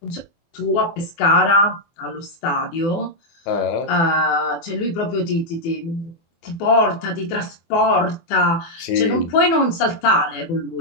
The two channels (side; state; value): right; late; 24 ms